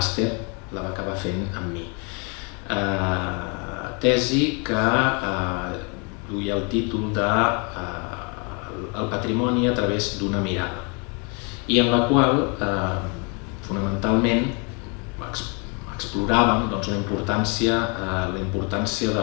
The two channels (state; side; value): quieter; right; 34.4 dB